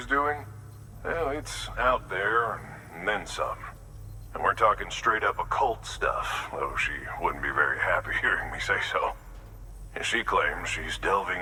doing, well, it's out there and then some. And we're talking straight up occult stuff, though she wouldn't be very happy hearing me say so. And she claims she's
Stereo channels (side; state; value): both; identical; correlation 1.00